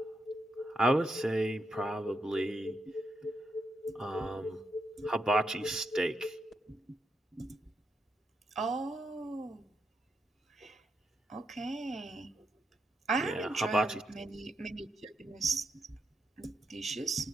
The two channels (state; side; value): normal; both; correlation 0.83